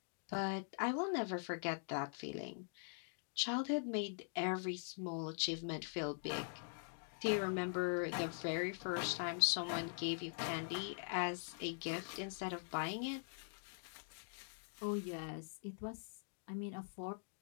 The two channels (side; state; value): right; silent; digital silence